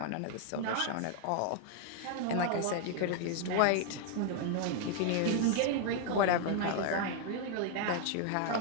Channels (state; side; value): different; both; correlation 0.00